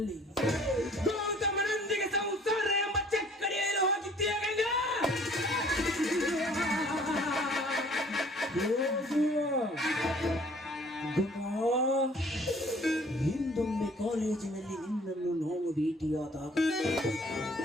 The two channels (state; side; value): normal; both; correlation 0.55